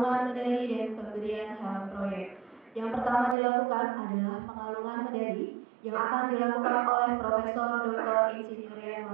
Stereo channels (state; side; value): drops out; left; at 3.4 s